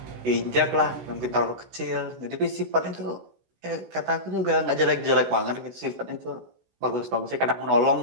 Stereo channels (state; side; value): late; left; 16 ms